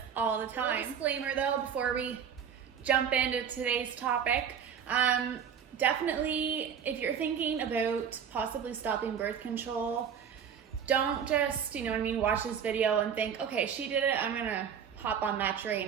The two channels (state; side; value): quieter; left; 7.7 dB